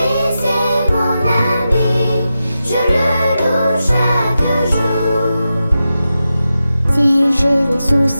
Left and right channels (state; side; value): inverted; both; correlation -0.91